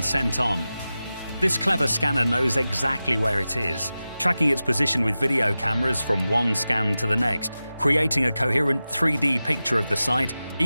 sent on. This clever scanner knows exactly where it is, tracking its position with video cameras from one scan to the next, creating a coherent 3D picture of the site,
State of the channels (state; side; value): inverted; both; correlation -0.95